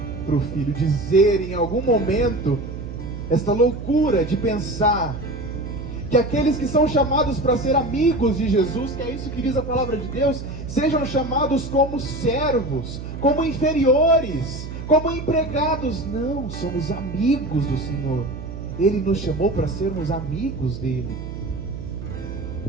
para o filho dizer em algum momento esta loucura de pensar que aqueles que são chamados para ser amigos de Jesus, que é isso que diz a palavra de Deus, sejam chamados como servos, como inferiores, como empregados. Não, somos amigos do Senhor. Ele nos chamou para sermos amigos dele.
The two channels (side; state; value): right; noise; hum, 9 dB below the sound